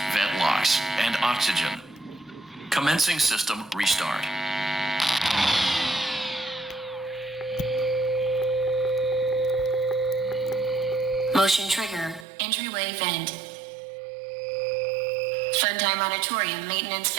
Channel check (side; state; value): left; drops out; at 12.2 s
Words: vent locks, and oxygen. Commencing system restart. Motion trigger, entryway vent. Funtime Auditorium maintenance